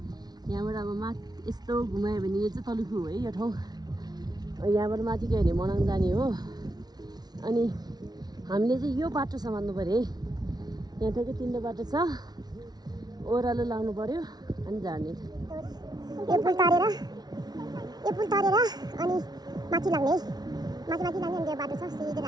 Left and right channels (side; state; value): left; late; 0.19 ms